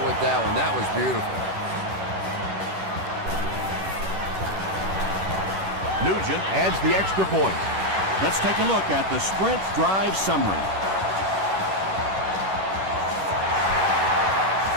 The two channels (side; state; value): left; late; 11 ms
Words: with that one. That was beautiful. Nugent adds the extra point. Let's take a look at the Sprint drive summary.